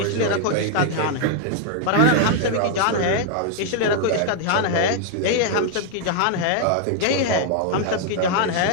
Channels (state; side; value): different; both; correlation 0.00